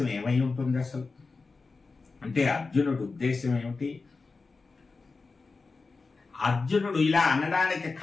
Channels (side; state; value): right; quieter; 4.1 dB